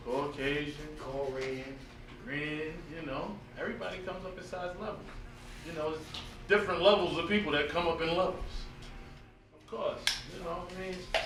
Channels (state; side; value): identical; both; correlation 1.00